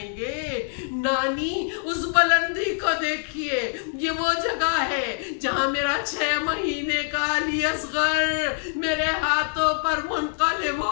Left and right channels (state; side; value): silent; right; 62 dB below the other